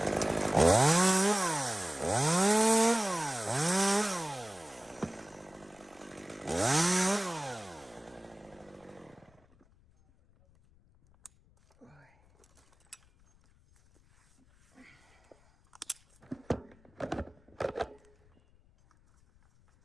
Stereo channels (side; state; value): left; noise; rumble, 30 dB below the sound